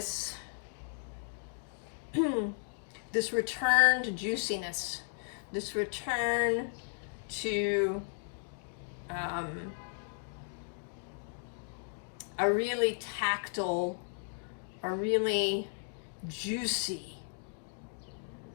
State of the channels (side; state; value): right; silent; digital silence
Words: this return to juiciness, this return to a really tactile, a really juicy